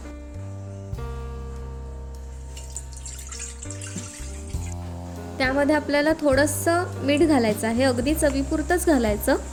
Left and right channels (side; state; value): both; identical; correlation 1.00